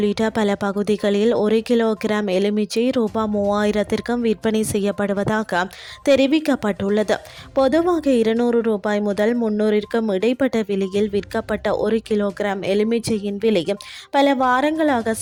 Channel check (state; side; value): identical; both; correlation 1.00